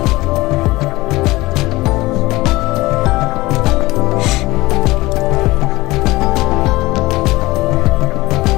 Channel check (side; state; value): right; quieter; 20.0 dB